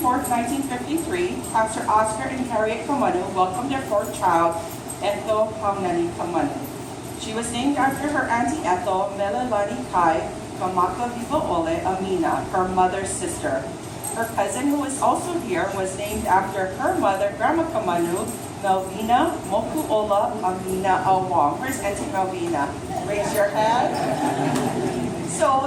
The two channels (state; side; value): identical; both; correlation 1.00